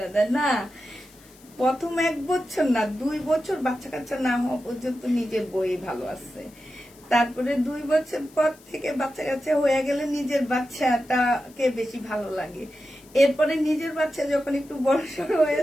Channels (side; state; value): left; noise; hiss, 26 dB below the sound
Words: দেয় না, প্রথম 1 বছর না 2 বছর বাচ্চা কাচ্চা না হওয়া পর্যন্ত নিজের বই ভালো আছে, তারপরে 2 বছর পর থেকে বাচ্চা কাচ্চা হয়ে গেলে নিজের বাচ্চাটাকে বেশি ভালো লাগে, এরপরে নিজের বাচ্চা যখন একটু বড় সড় হয়ে